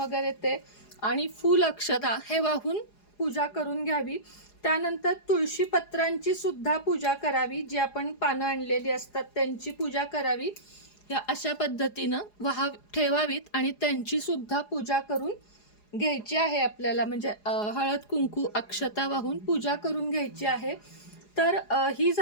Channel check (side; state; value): right; late; 4.8 ms